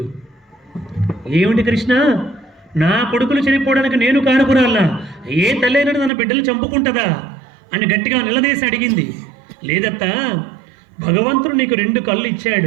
ఏమిటి కృష్ణ, నా కొడుకులు చనిపోవడానికి నేను కారకురాలా? ఏ తల్లైనా తన బిడ్డలు చంపుకుంటుందా అని గట్టిగా నిలదీసి అడిగింది. లేదత్తా, భగవంతుడు నీకు 2 కళ్ళు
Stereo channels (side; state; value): left; drops out; at 6.1 s